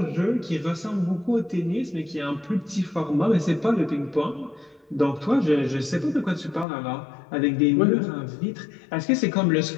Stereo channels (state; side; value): drops out; right; at 6.7 s